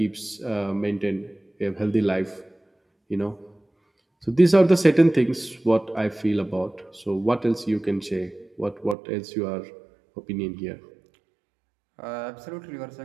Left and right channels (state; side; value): drops out; left; at 9.0 s